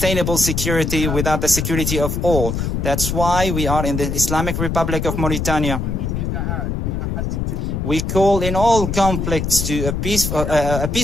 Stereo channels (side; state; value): left; noise; rumble, 2 dB below the sound